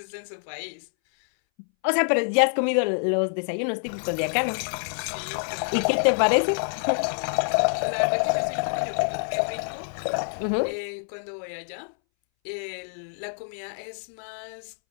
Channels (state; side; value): silent; right; 61 dB below the other